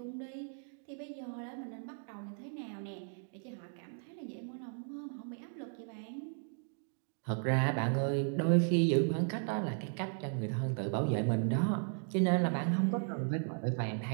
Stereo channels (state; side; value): silent; left; 54 dB below the other